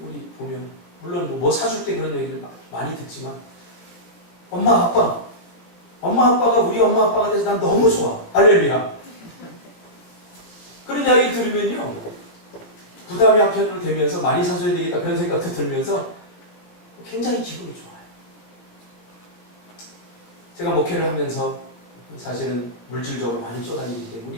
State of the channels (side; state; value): right; late; 18 ms